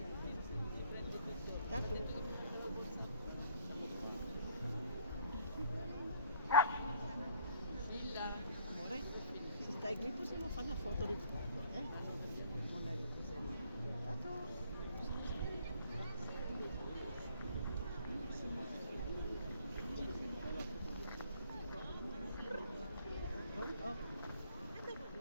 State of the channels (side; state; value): both; inverted; correlation -0.61